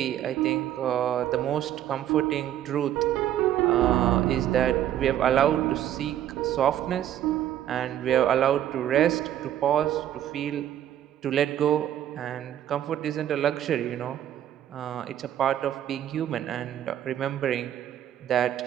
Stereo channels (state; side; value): quieter; left; 11.4 dB